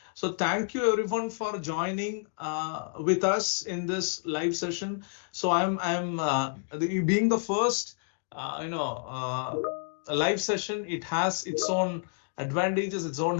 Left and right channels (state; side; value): silent; right; digital silence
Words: So thank you everyone for joining with us in this live session. So I'm being the first, live session. It has its own advantages,